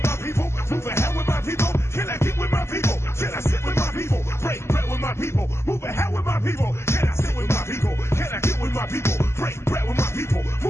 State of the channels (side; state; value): right; late; 0.13 ms